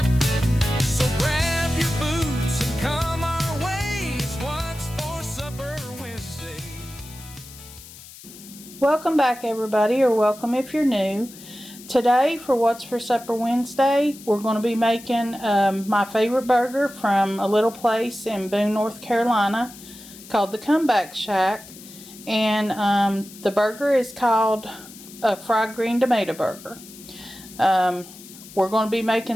So grab your boots and come our way. It's what's for Supper Wednesday. Welcome back, everybody, or welcome if you're new. Today for What's for Supper Wednesday, we're going to be making my favorite burger from a little place in Boone, North Carolina called the Comeback Shack. And the burger is called a fried green tomato burger. We're going to be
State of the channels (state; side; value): noise; left; hiss, 18 dB below the sound